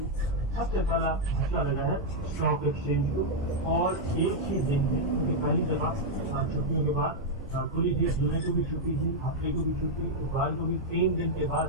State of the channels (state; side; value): normal; both; correlation -0.02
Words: سب سے پہلا مسئلہ لگا ہے اسٹاک ایکسچینج کو، اور ایک ہی دن میں پہلی دفعہ چھٹیوں کے بعد کھلی تھی، جمعے کو بھی چھٹی تھی، ہفتے کو بھی چھٹی، اتوار کو بھی 3 دن کے بعد